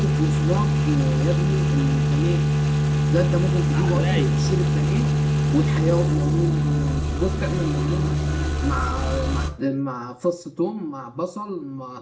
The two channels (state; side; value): identical; both; correlation 1.00